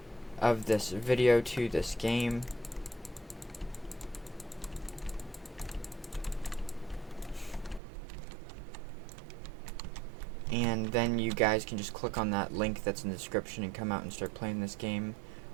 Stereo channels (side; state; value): left; drops out; at 7.8 s